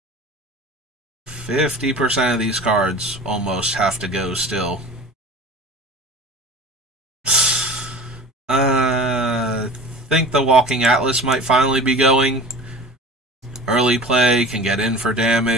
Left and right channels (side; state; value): both; normal; correlation 0.38